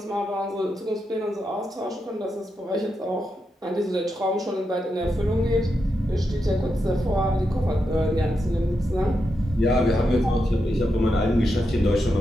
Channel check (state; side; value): normal; both; correlation 0.85